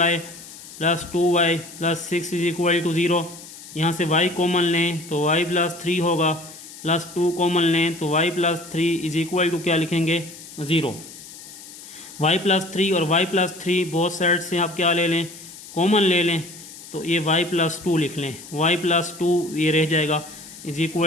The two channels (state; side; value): noise; left; hiss, 16 dB below the sound